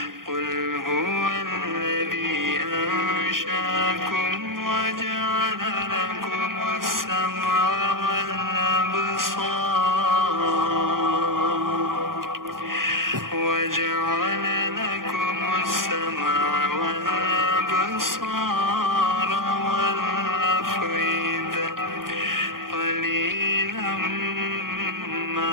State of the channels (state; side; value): late; left; 0.91 ms